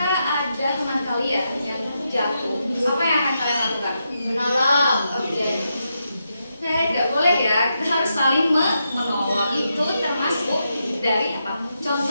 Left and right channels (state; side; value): inverted; both; correlation -0.84